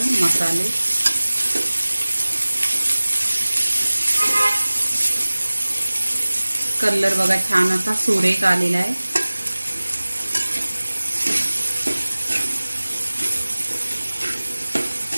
मसाले। कलर बघा छान असा सुरेख आलेला आहे।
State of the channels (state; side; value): inverted; both; correlation -1.00